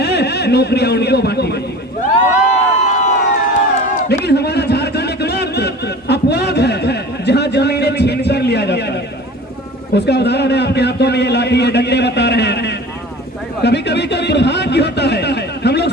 नौकरियां उनको बांटी गई। लेकिन हमारा झारखंड एकमात्र अपवाद है जहां जमीनें छीन कर लिया जाता है। उसका उदाहरण है आपके हाथों में ये लाठी, ये डंडे बता रहे हैं। कभी कभी तो दुर्भाग्य होता है, हम लोग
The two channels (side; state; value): both; normal; correlation 0.39